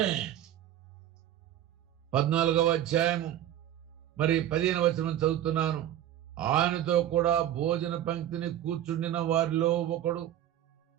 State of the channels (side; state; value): left; quieter; 11.8 dB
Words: మరి 15వ వచనం చదువుతున్నాను. ఆయనతో కూడా భోజన పంక్తిని కూర్చుండిన వారిలో ఒకడు